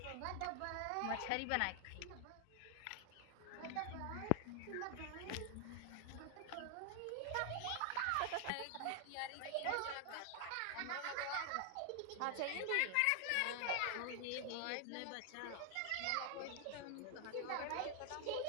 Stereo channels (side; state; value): both; different; correlation 0.00